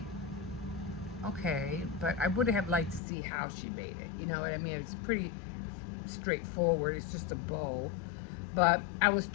okay, but I would have liked to see how she made it. You know what I mean? It's pretty straightforward. It's just a bow. But I was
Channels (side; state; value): right; drops out; at 3.0 s